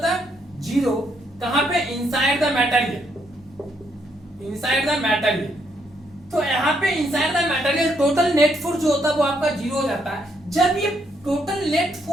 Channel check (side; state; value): both; normal; correlation 0.74